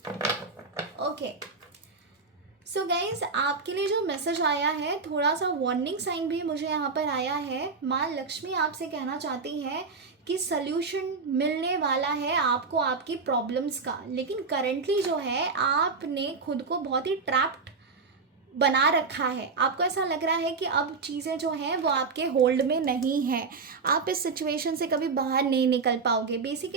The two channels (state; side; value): quieter; left; 4.6 dB